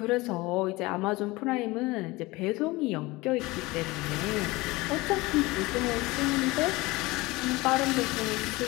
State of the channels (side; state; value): right; quieter; 21.6 dB